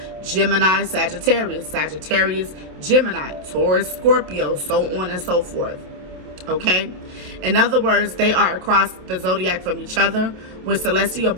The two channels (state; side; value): late; left; 27 ms